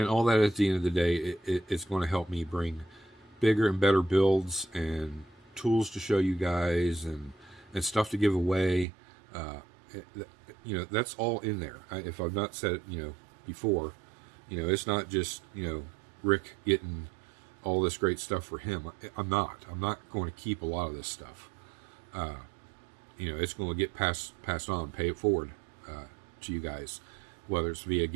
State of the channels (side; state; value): left; drops out; at 8.8 s